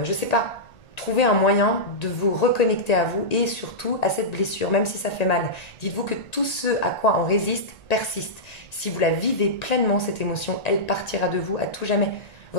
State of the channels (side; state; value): right; late; 1.8 ms